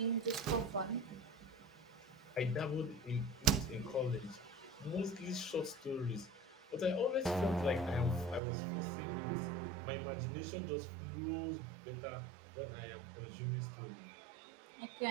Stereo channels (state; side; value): drops out; left; at 8.4 s